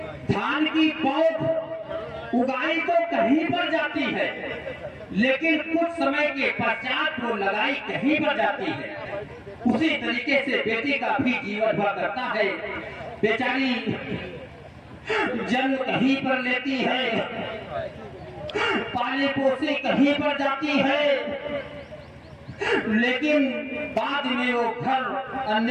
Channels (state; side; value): identical; both; correlation 1.00